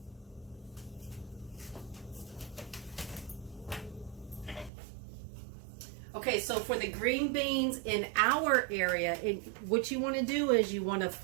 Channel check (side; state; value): left; drops out; at 4.7 s